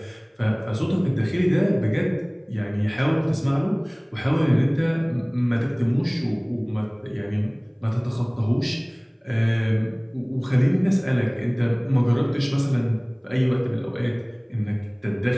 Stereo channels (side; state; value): both; identical; correlation 1.00